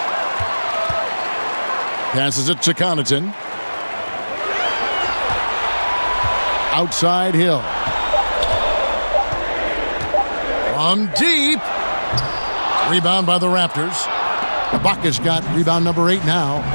Passes it to Connaughton. Outside Hill. From deep. Rebound by the Raptors. Ibaka's got rebound number 8 now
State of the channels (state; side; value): inverted; both; correlation -1.00